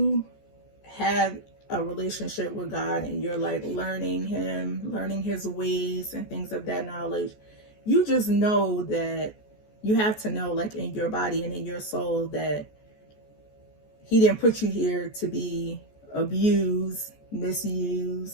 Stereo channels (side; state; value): right; late; 14 ms